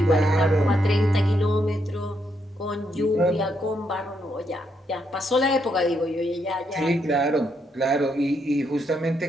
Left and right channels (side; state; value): both; normal; correlation 0.78